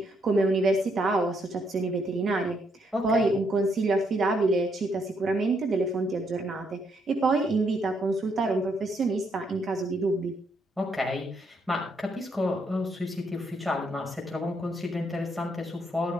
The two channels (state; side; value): normal; both; correlation 0.74